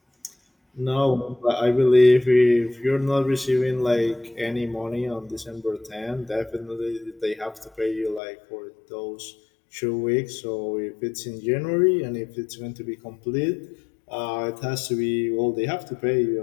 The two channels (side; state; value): right; drops out; at 8.2 s